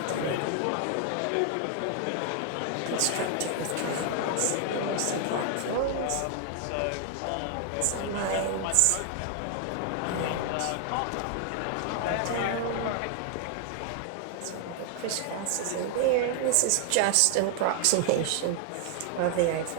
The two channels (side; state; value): both; different; correlation 0.00